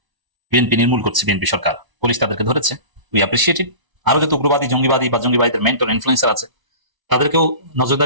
বিএনপি নির্মূল করছে, বিএনপি সরকার, পুলিশ তাদেরকে ধরেছে, উই অ্যাপ্রিসিয়েট ইট। আরো যত উগ্রবাদী, জঙ্গিবাদী বা জঙ্গিবাদীদের মেন্টর ইনফ্লুয়েন্সার আছে তাদেরকেও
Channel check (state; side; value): late; left; 1.0 ms